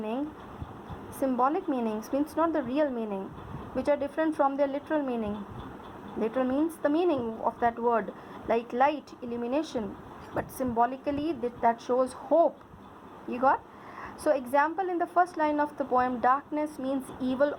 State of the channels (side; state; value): both; identical; correlation 1.00